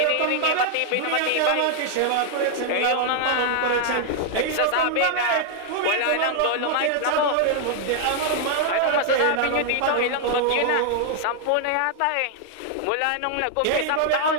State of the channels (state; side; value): different; both; correlation 0.00